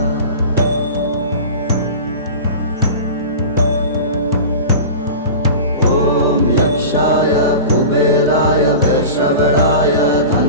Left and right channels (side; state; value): both; inverted; correlation -0.33